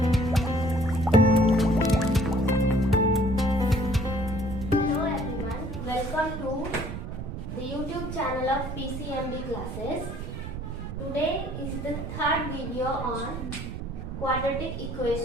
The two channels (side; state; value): right; noise; rumble, 7 dB below the sound